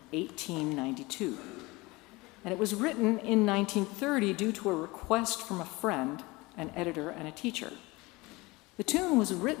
1892. And it was written in 1930 due to a request from a friend, an editor, and a teacher. The tune was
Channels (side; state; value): right; quieter; 22.8 dB